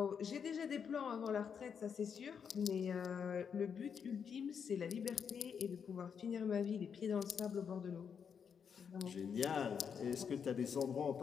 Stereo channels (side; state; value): right; quieter; 7.0 dB